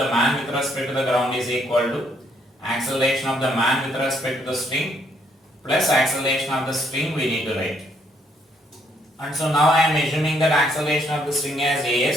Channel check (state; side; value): normal; both; correlation 0.70